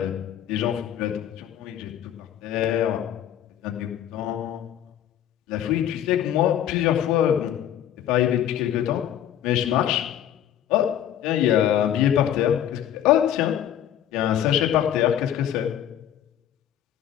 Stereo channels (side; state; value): right; quieter; 10.7 dB